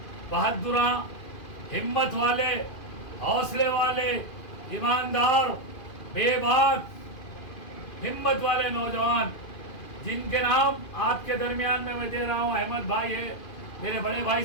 بہادراں، ہمت والے، حوصلے والے، ایماندار، بے باک ہمت والے نوجوان جن کے نام آپ کے درمیان میں دے رہا ہوں۔ احمد بھائی ہے، میرے بڑے بھائی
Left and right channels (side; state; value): right; late; 2.4 ms